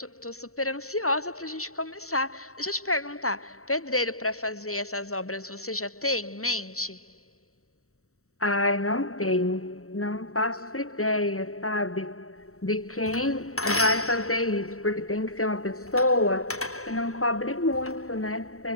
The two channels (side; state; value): right; late; 0.64 ms